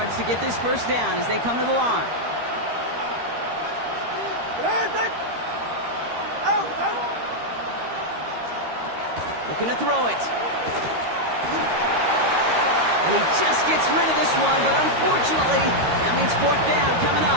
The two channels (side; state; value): left; late; 13 ms